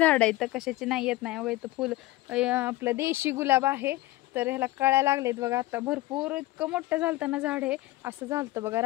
इथं कशाची नाही येत नाही. बघा इथं फुल आपलं देशी गुलाब आहे तर ह्याला कळ्या लागलेत बघा. आता भरपूर इतकं मोठं झालतं ना झाड हे असं झालतं बघा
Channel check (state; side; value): quieter; right; 17.9 dB